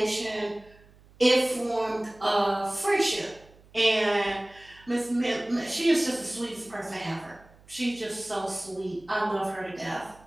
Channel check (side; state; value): right; noise; hum, 26 dB below the sound